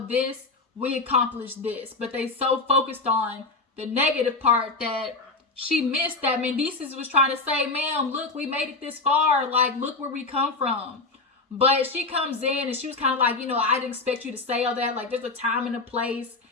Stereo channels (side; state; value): right; quieter; 3.6 dB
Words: this, we accomplished this. But they so focused on the negative part that she missed that Mendeecees was trying to say, ma'am, look, we made it this far. Like, look where we come from. But she comes in and she was kind of like, you know, I didn't expect you to say all that. Like, there's a time and a place.